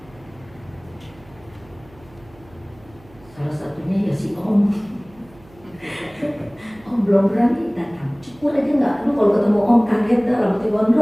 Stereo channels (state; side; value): noise; right; hum, 25 dB below the sound